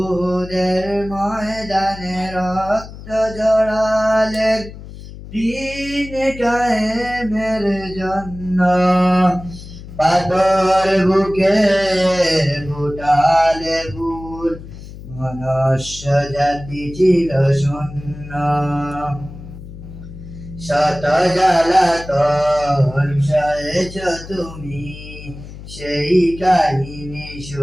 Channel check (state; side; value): noise; left; hum, 14 dB below the sound